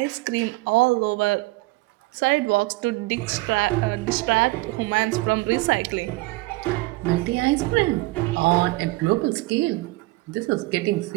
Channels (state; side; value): quieter; left; 21.7 dB